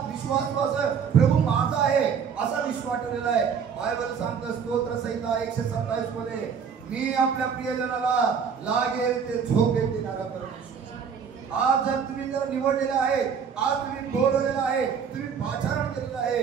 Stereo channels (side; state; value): left; quieter; 6.8 dB